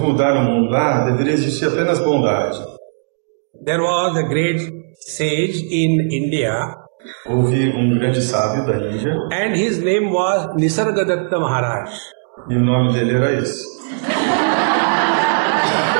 o mundo. Deveria existir apenas bondade. There was a great sage in India. Houve grande sábio da Índia. And his name was Nisargadatta Maharaj. E o nome dele era esse.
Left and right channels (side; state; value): left; silent; digital silence